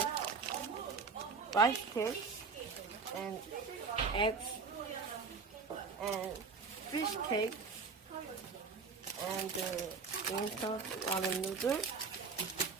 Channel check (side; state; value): left; quieter; 4.9 dB